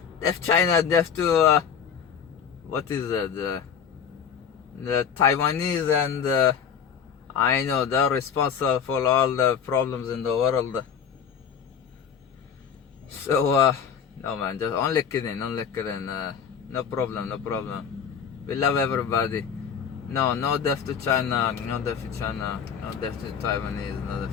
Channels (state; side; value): quieter; right; 7.4 dB